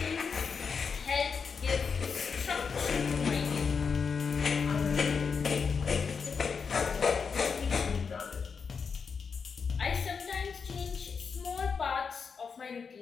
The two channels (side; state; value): right; quieter; 5.7 dB